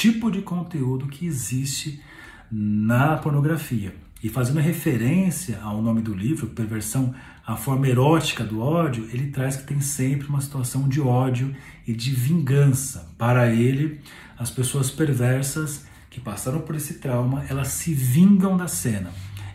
de conteúdo que existe na pornografia. E fazendo referência ao nome do livro, Perversão, a forma erótica do ódio, ele traz que tem sempre uma situação de ódio e de vingança. Para ele, as pessoas perversas que passaram por esse trauma, elas se vingam da cena.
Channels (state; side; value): identical; both; correlation 1.00